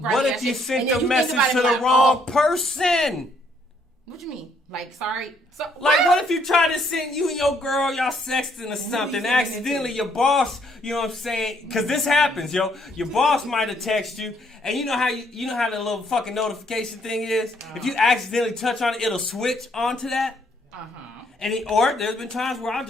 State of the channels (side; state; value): both; normal; correlation 0.69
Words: shit. What if you sent the message to the wrong person? What you mean? Like, sorry? So, what if you try to send you and your girl, y'all sexting or something, accidentally your boss, you know what I'm saying? Because this happens, yo. Your boss might have texted you, and you know how the little fucking notification thing is? If you accidentally touch on it, it'll switch onto that. Or there's been times where I'll